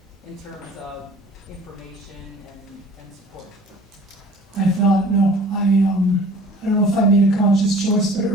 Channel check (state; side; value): normal; both; correlation 0.48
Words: in terms of information and support. I thought, no, I don't know if I made a conscious choice, but